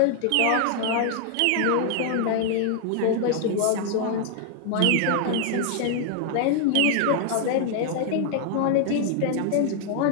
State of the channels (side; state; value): both; different; correlation 0.00